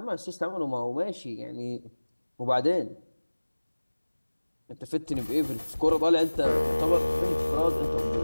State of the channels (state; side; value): inverted; both; correlation -1.00